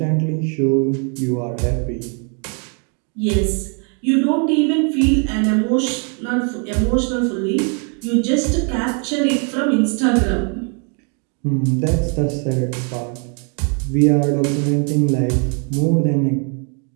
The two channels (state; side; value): quieter; left; 39.2 dB